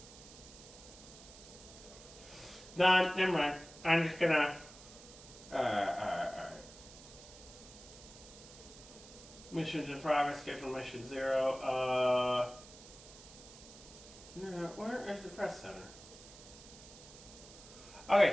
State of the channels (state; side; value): noise; right; hiss, 18 dB below the sound